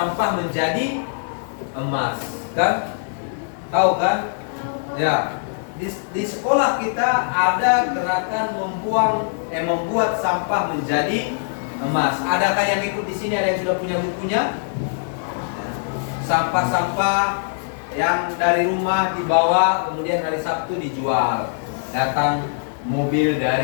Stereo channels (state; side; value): silent; right; digital silence